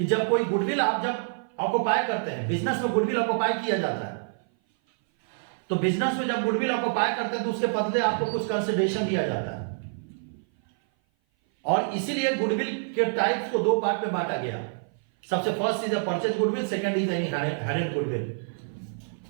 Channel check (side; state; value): left; silent; 56 dB below the other